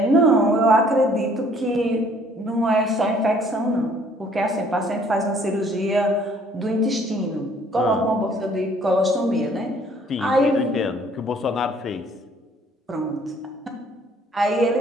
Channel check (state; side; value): normal; both; correlation 0.60